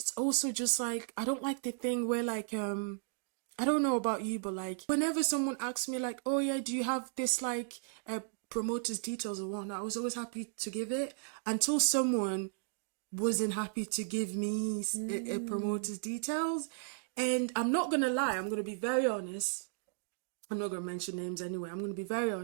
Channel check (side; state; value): left; silent; digital silence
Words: also just like, I don't like the thing where like I don't know about you, but like whenever someone asks me like, oh yeah, do you have this like promoter's details or whatnot, I was always happy to give it until someone wasn't happy to give me a promoter's details. And I'm not gonna lie, I'm gonna be very honest. I'm not gonna mention names anyway. I'm gonna be very